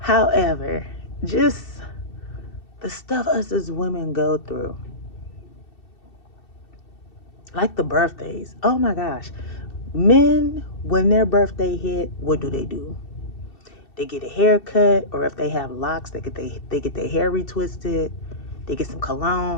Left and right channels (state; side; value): late; right; 2.7 ms